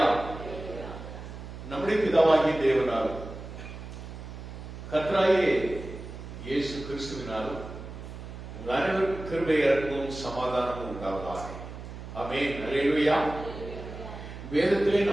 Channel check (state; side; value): noise; right; hum, 11 dB below the sound